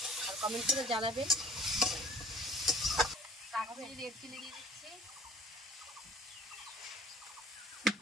আর কমেন্ট করে জানাবেন। কাশ্মীরি রেড চিলি দিয়ে দিচ্ছি।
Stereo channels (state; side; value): normal; both; correlation 0.50